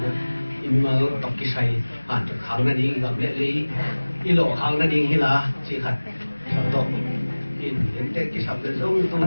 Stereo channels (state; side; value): inverted; both; correlation -1.00